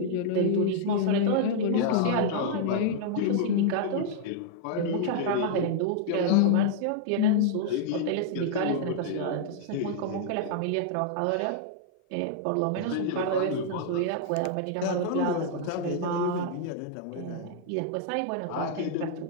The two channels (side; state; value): both; different; correlation -0.01